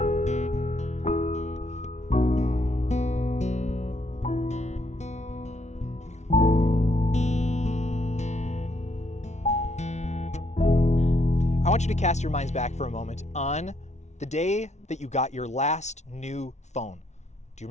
want you to cast your minds back for a moment on the day that you got your last new phone. Do you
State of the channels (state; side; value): late; right; 0.33 ms